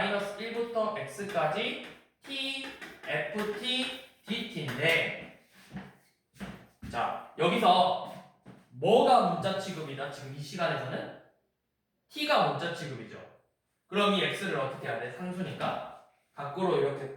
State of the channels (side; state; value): both; identical; correlation 1.00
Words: 1부터 x까지 t ft dt인데 자, 여기서 뭐가 문자 취급이다? 지금 이 시간에서는 t가 문자 취급이죠. 그럼 이 x를 어떻게 해야 돼? 상수니까 밖으로 이렇게